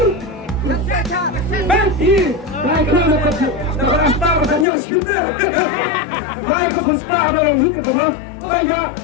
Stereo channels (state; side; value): drops out; right; at 4.7 s